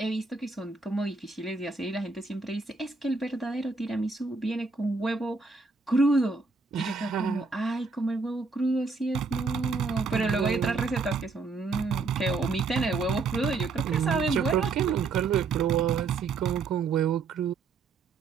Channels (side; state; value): left; quieter; 4.3 dB